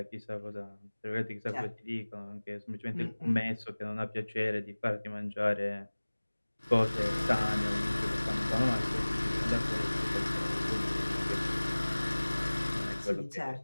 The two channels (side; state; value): both; inverted; correlation -1.00